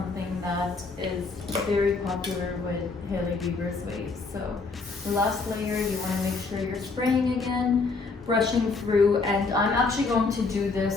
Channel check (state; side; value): quieter; right; 4.1 dB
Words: that is very popular with Hailey Bieber's waves. So the last layer, you want to make sure you're spraying again, brushing through, and I'm actually going to do